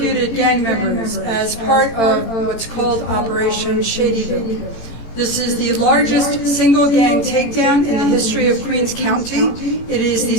gang members as part of what's called Operation Shadyville. This is the largest single gang takedown in the history of Queens County. It is the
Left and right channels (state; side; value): late; right; 18 ms